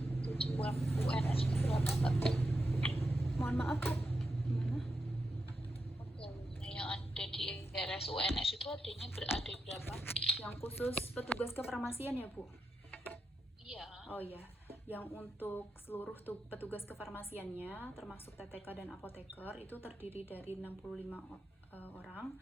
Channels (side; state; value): both; normal; correlation 0.87